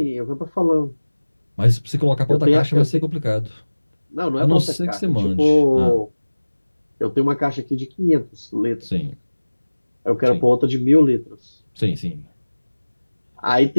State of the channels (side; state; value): both; inverted; correlation -1.00